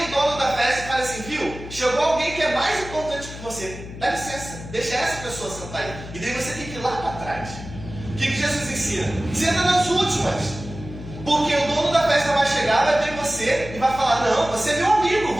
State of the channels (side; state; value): left; noise; hum, 12 dB below the sound